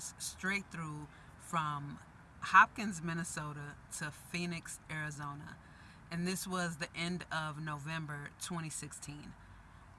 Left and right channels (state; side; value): identical; both; correlation 1.00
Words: straight through from Hopkins, Minnesota to Phoenix, Arizona. And this was the end of November 2016.